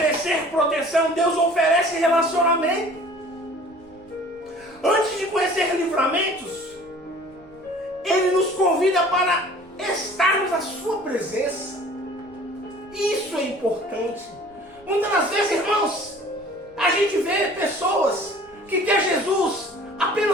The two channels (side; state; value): right; noise; rumble, 30 dB below the sound